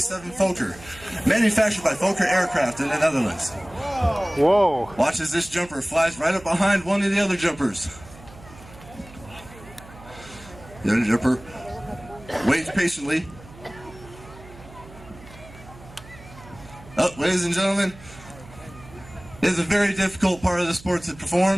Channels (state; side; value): noise; right; hum, 20 dB below the sound